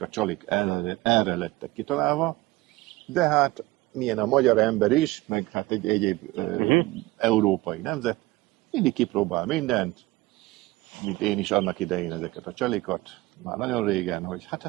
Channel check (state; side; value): quieter; left; 19.8 dB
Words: a csalik erre lettek kitalálva, de hát milyen a magyar ember is, meg hát egy egyéb európai nemzet, mindig kipróbál mindent, mint én is annak idején ezeket a csalikat, már nagyon régen, hogy hát